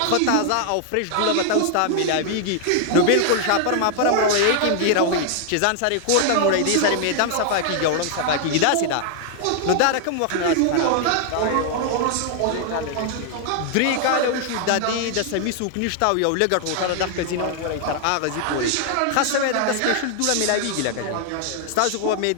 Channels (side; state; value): both; different; correlation 0.00